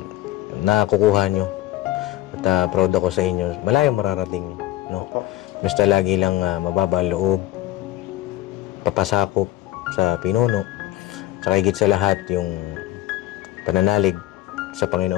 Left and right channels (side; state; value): right; quieter; 15.2 dB